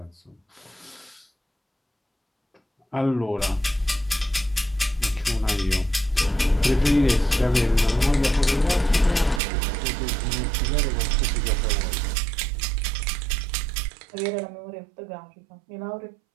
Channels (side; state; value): left; drops out; at 9.4 s